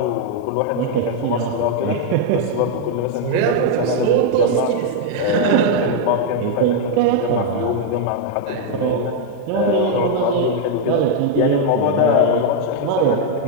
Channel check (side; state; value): both; different; correlation 0.00